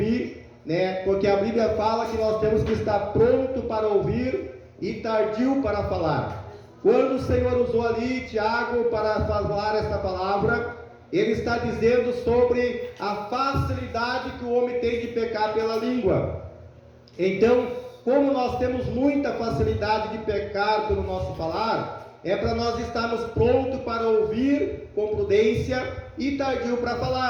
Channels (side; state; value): both; identical; correlation 1.00